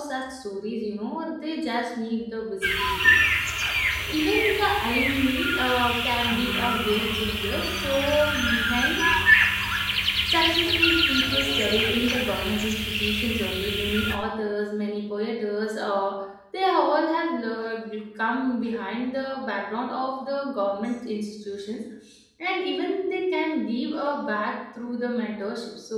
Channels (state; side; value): identical; both; correlation 1.00